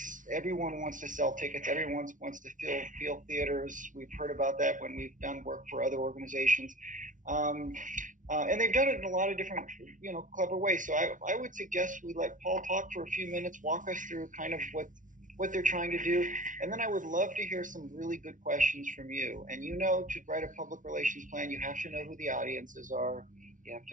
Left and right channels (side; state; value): left; late; 0.38 ms